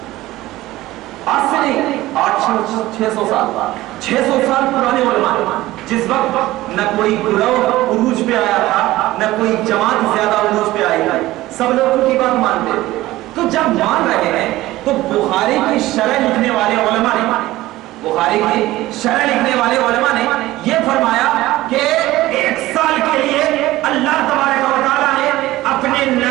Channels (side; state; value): left; quieter; 17.0 dB